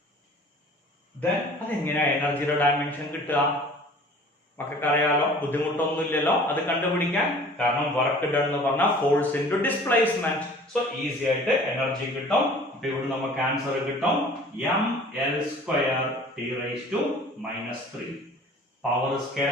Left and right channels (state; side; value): normal; both; correlation 0.47